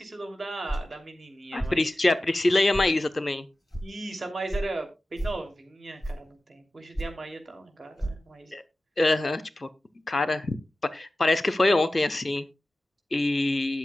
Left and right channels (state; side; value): normal; both; correlation 0.95